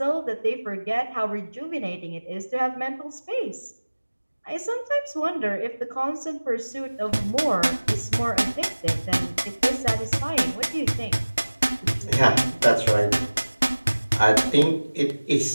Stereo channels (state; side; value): inverted; both; correlation -1.00